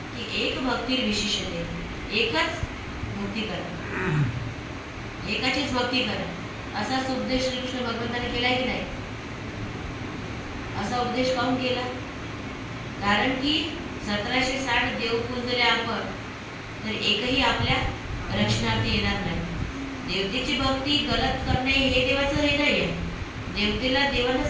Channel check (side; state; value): both; identical; correlation 1.00